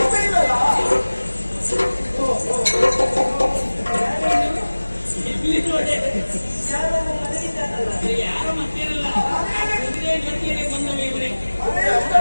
ಇಲ್ಲಲ್ಲ. ಇಲ್ಲಿ ನೋಡಿ ಯಾರೋ ಮನೆಗಿದ್ದಾನಲ್ಲ, ಯಾರ ಮತ್ತೇನಲ್ಲ ಕುದುರೆ ಜೊತೆಯಲ್ಲಿ ಬಂದವ ಇವರೇ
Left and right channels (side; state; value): both; inverted; correlation -1.00